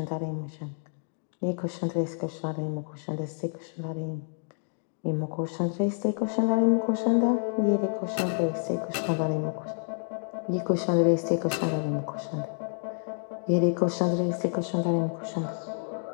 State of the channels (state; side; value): silent; right; digital silence